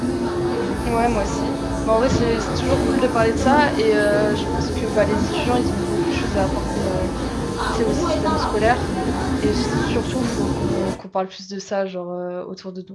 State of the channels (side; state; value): both; identical; correlation 1.00